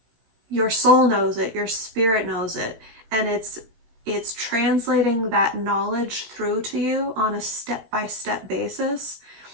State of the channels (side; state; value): left; late; 17 ms